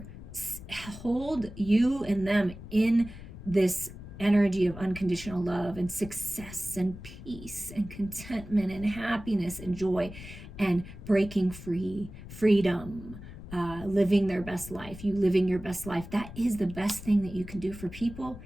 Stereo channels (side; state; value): left; noise; rumble, 14 dB below the sound